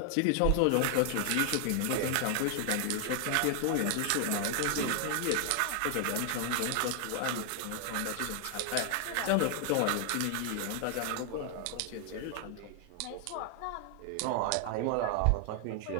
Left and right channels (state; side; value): different; both; correlation 0.00